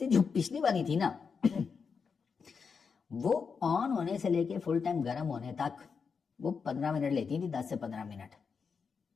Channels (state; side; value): quieter; right; 5.7 dB